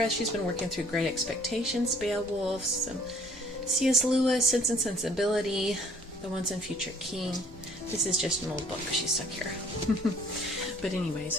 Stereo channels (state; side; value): normal; both; correlation 0.57